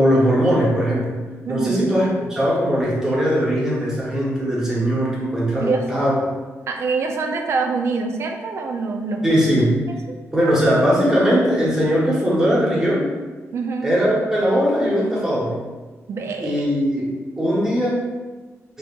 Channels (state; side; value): normal; both; correlation 0.81